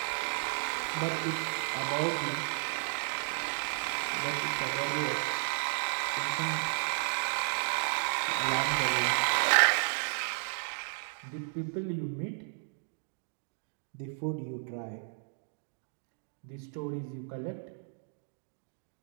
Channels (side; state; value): left; silent; digital silence